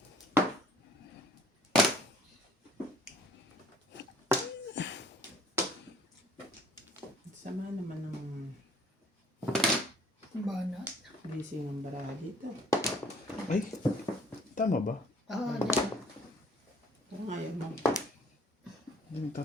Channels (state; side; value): normal; both; correlation 0.56